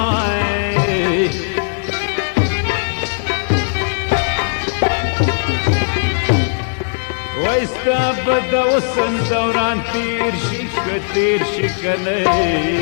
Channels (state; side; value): silent; right; 60 dB below the other